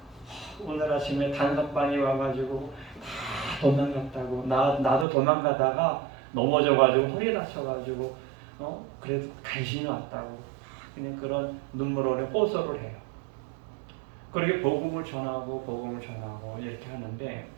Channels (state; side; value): drops out; left; at 5.1 s